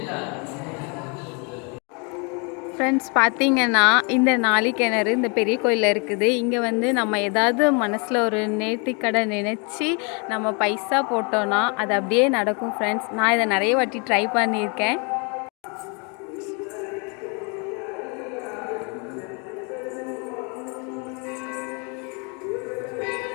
ஃப்ரெண்ட்ஸ், பார்த்தீங்கன்னா இந்த நாளிக்கிணறு இந்த பெரிய கோயிலில் இருக்குது. இங்கே நம்ம ஏதாவது மனசில் ஒரு நேர்த்திக்கடை நினச்சி நம்ம பைசா போட்டோன்னா அது அப்படியே நடக்கும். ஃப்ரெண்ட்ஸ், நான் இதை நிறைய வாட்டி ட்ரை பண்ணியிருக்கேன்.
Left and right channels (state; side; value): quieter; right; 34.2 dB